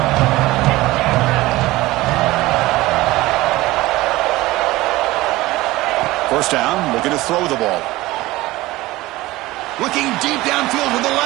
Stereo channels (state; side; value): quieter; left; 18.6 dB